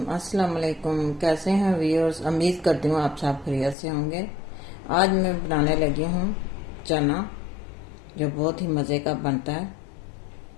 अस्सलाम वालेकुम। कैसे हैं व्यूअर्स? उम्मीद करती हूँ आप सब खैरियत से होंगे। आज मैं बनाने लगी हूँ चना, जो बहुत ही मज़े का बनता है।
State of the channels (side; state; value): right; drops out; at 3.8 s